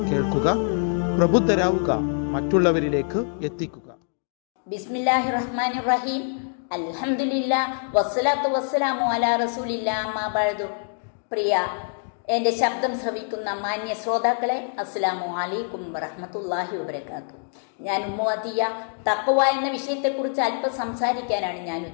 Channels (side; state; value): right; silent; 62 dB below the other